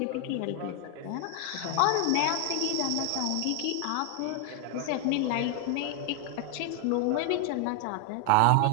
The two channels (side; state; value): both; different; correlation 0.00